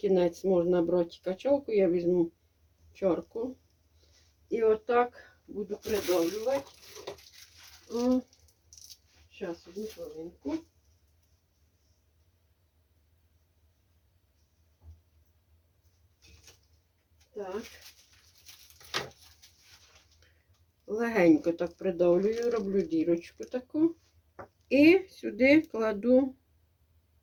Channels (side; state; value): both; identical; correlation 1.00